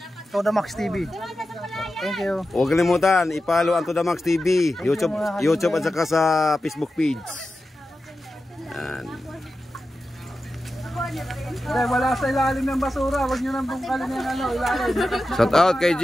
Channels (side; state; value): both; normal; correlation 0.92